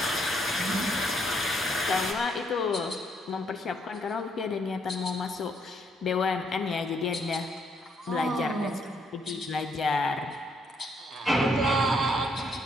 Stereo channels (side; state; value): both; normal; correlation 0.71